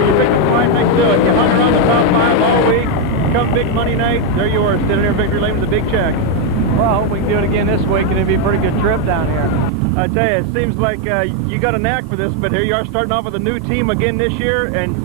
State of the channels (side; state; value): both; normal; correlation 0.02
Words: you, you picked a fine night to do it. You hung around the top 5 all week. Come big money night, there you are, standing there in victory lane with a big check. Well, I hope we can do it again this week, and it'll be a pretty good trip down here. I tell you, it seems like you got a knack for this, but here you are starting off with a new team again this year,